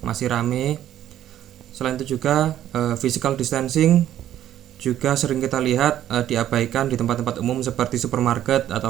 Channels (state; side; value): quieter; left; 11.8 dB